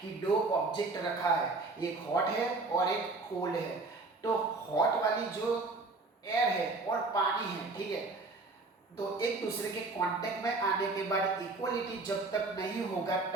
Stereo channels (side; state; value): left; quieter; 3.5 dB